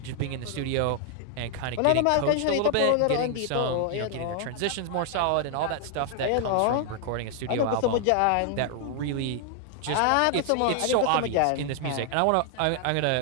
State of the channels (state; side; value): different; both; correlation 0.00